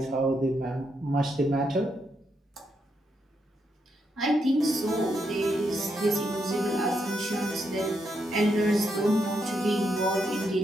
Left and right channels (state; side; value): normal; both; correlation 0.80